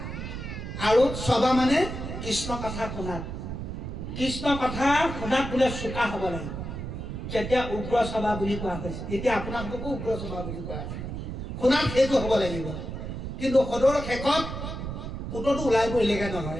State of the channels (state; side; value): noise; right; rumble, 6 dB below the sound